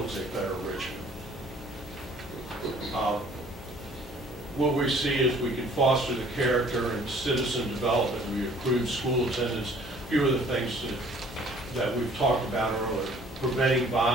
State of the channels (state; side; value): normal; both; correlation 0.55